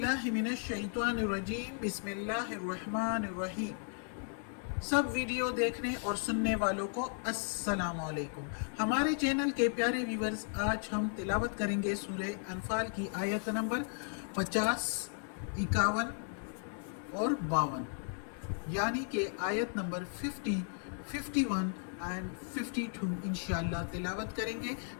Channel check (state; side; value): silent; right; 54 dB below the other